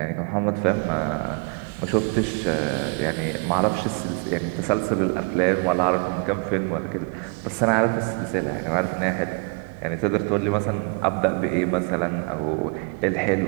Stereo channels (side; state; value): left; quieter; 36.8 dB